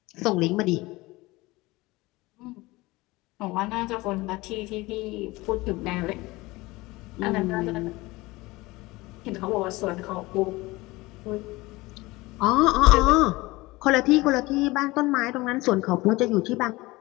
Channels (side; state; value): right; quieter; 21.1 dB